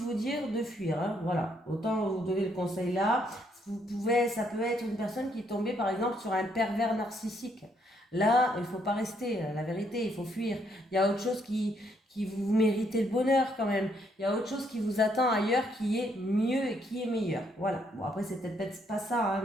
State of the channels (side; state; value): both; normal; correlation 0.71